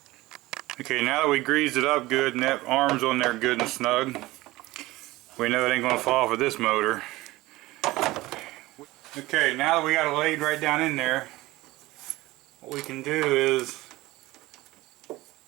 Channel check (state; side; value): quieter; left; 18.9 dB